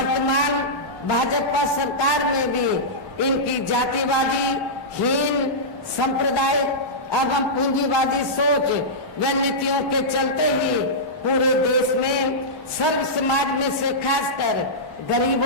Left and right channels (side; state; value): both; normal; correlation -0.13